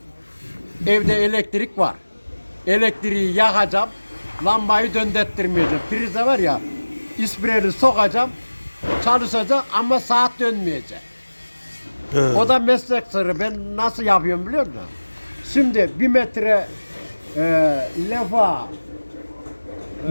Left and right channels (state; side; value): inverted; both; correlation -1.00